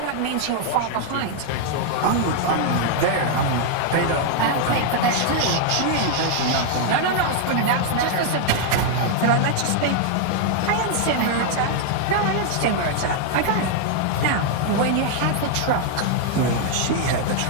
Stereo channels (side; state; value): both; different; correlation 0.00